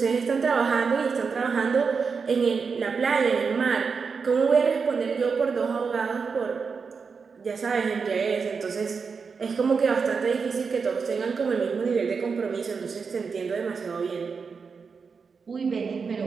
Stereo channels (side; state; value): left; quieter; 5.4 dB